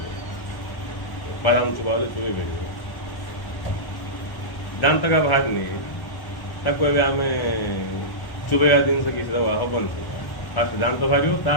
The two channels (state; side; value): late; right; 1.1 ms